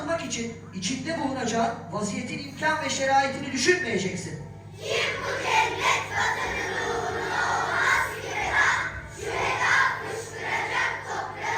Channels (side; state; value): both; identical; correlation 1.00